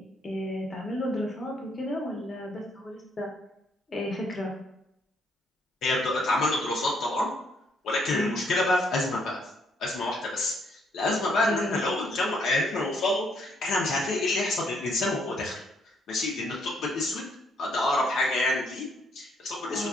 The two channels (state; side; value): normal; both; correlation 0.70